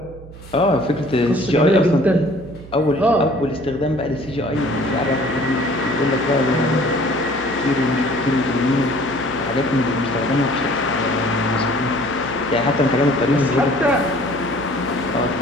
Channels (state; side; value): noise; right; hum, 17 dB below the sound